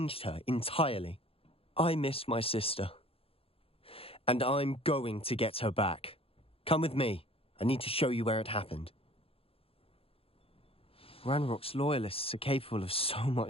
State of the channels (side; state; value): right; late; 0.27 ms